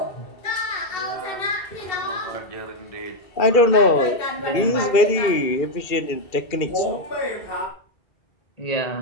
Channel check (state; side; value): late; right; 2.4 ms